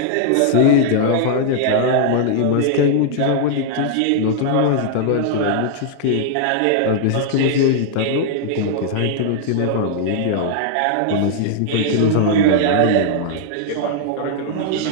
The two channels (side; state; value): both; different; correlation -0.01